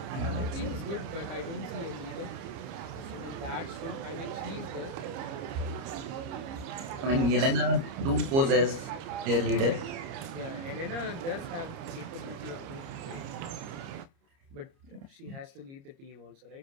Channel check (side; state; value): left; late; 30 ms